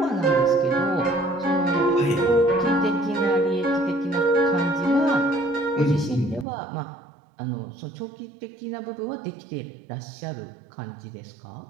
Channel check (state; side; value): drops out; left; at 6.5 s